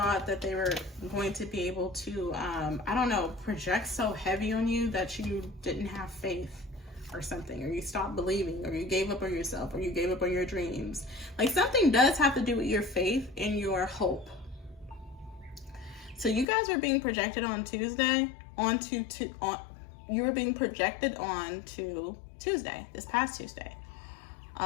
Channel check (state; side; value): drops out; right; at 16.4 s